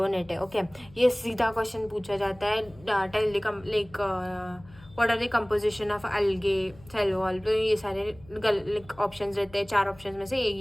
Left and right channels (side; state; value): left; noise; hum, 23 dB below the sound